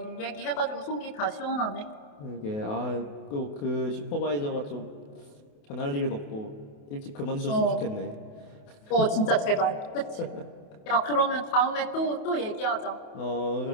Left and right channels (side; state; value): right; late; 28 ms